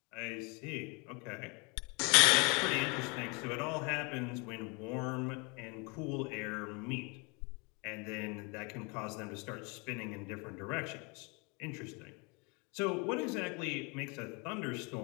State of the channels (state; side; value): quieter; right; 30.4 dB